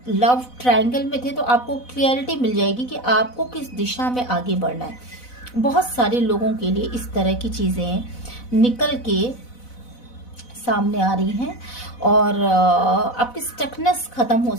लव ट्रायंगल में थे तो आपको क्लियरिटी मिल जाएगी कि आपको किस दिशा में आगे बढ़ना है। बहुत सारे लोगों के लिए इस तरह की चीजें निकल के सामने आ रही हैं, और आपकी स्टकनेस खत्म हो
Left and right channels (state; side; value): late; right; 4.0 ms